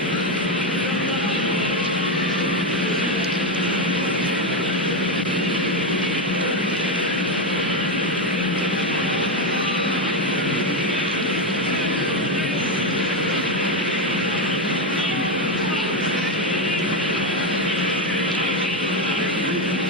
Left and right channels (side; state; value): both; normal; correlation 0.09